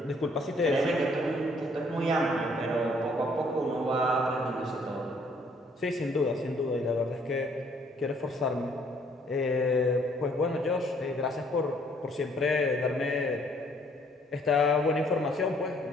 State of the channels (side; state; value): both; normal; correlation 0.63